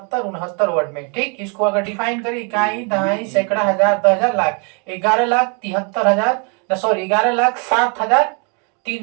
69 वर्ड में। ठीक, इसको अगर डिफाइन करें इकाई, दहाई, सैकड़ा, हजार, 10,000, लाख, 11,73,000 सॉरी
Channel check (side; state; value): left; quieter; 35.7 dB